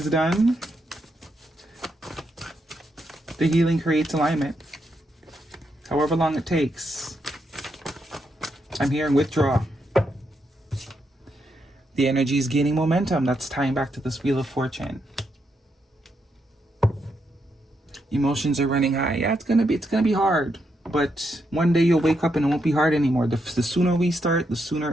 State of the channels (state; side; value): normal; both; correlation 0.81